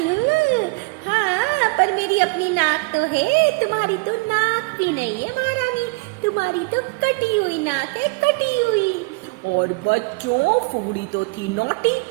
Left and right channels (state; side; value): quieter; left; 28.7 dB